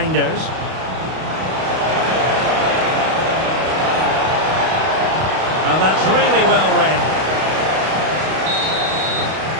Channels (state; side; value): late; left; 32 ms